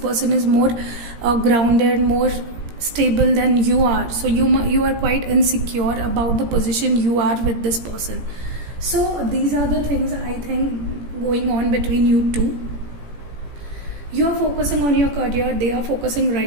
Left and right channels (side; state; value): left; late; 17 ms